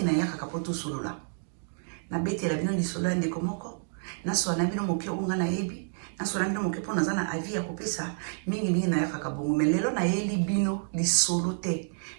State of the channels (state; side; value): silent; left; digital silence